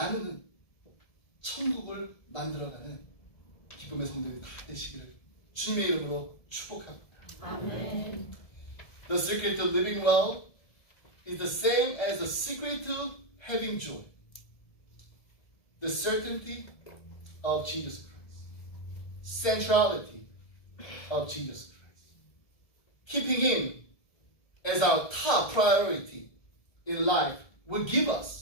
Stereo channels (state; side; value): late; right; 1.7 ms